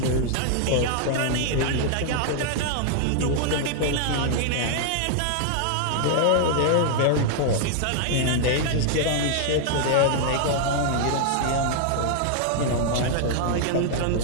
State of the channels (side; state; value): both; different; correlation 0.00